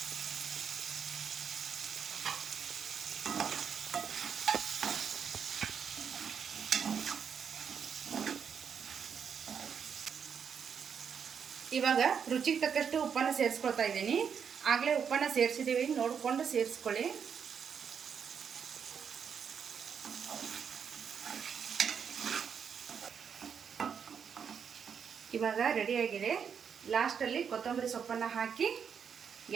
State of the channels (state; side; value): quieter; left; 7.1 dB